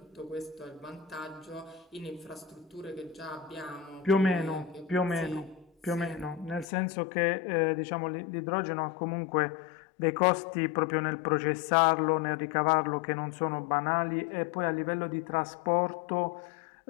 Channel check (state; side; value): drops out; right; at 6.7 s